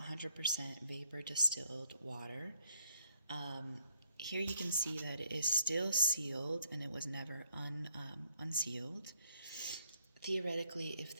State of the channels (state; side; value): inverted; both; correlation -0.71